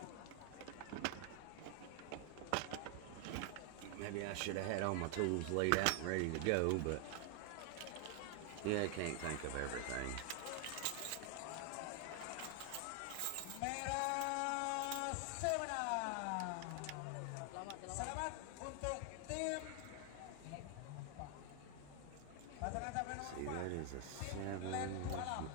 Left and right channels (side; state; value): both; different; correlation 0.00